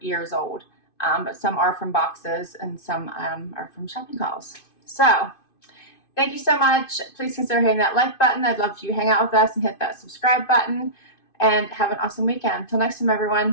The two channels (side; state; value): right; late; 2.5 ms